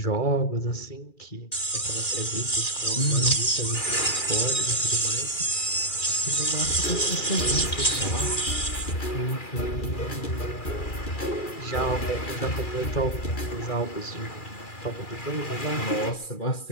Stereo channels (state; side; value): late; right; 2.4 ms